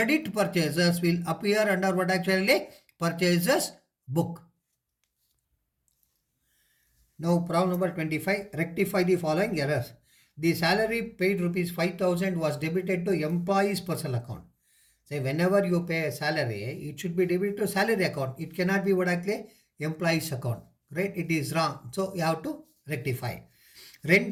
purchases will appear under what actually purchases book. Now problem number 25. Rectify the following errors. The salary paid rupees 5,000 was debited to employee's personal account. Say whenever you pay a salary, it should be debited to salary account. It cannot be what actually employee's account. Right? It is wrong. So you have to rectify.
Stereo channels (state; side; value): identical; both; correlation 1.00